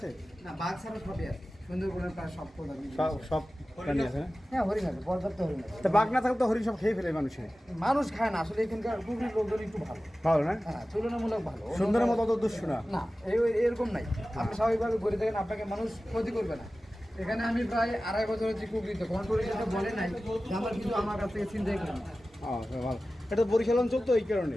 না বাঘ ছাড়া সবই আছে সুন্দরবনের প্রায় সব সব প্রাণী আছে না হ্যাঁ হরিণ আছে পর্যাপ্ত হরিণ আছে তা বাঘ না থাকলে তো হরিণ সব খেয়ে ফেলে মানুষের মানুষ খায় না আসলে এখানকার কুকুরের লোকজন একটু ভালো ভালো না হ্যাঁ তুলনামূলক ভালো সুন্দরের মতো অত দুষ্ট না না এরকম নাই আপনি স্বাভাবিকভাবে ঘুরে দেখেন আপনাকে মানুষ ক্ষতি করবে না এখানে আমি প্রায় 2.5 বছর হচ্ছে কুকুরিতে কোনো টুরিস্ট বলে নাই যে আমার কিছু আমার কাছ থেকে চিন্তাই করেন ভালো এটা বরিশাল অঞ্চল তো এই কারণে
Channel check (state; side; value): normal; both; correlation 0.96